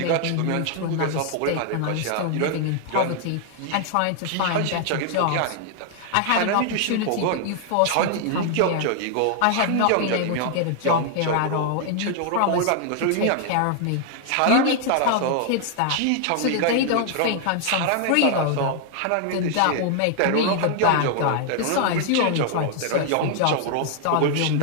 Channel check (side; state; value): both; different; correlation 0.00